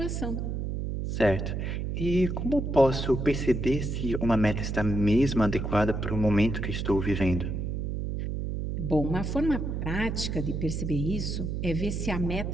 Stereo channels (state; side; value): noise; right; hum, 3 dB below the sound